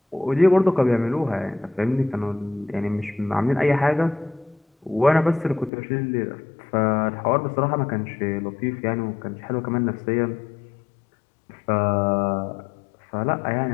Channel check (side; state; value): right; drops out; at 5.7 s